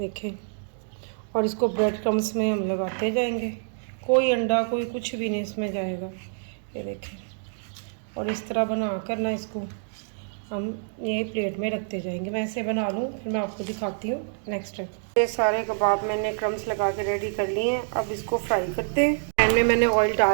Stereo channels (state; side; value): silent; left; digital silence